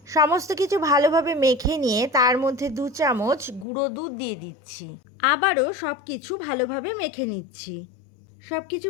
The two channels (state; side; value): drops out; right; at 3.7 s